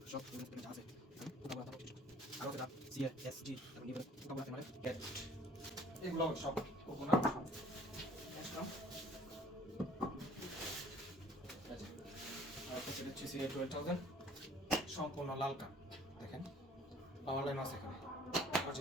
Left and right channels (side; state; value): both; normal; correlation 0.55